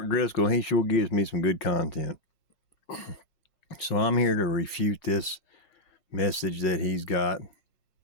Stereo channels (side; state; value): right; late; 6.4 ms